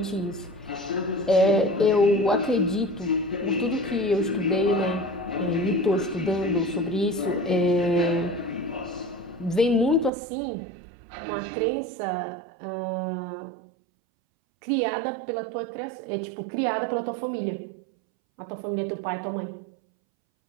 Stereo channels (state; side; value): drops out; left; at 10.1 s